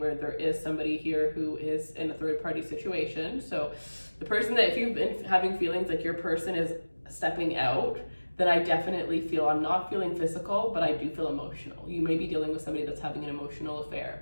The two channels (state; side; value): inverted; both; correlation -1.00